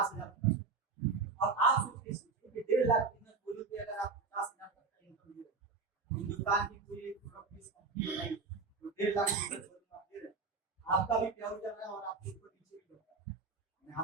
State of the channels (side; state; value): left; quieter; 4.5 dB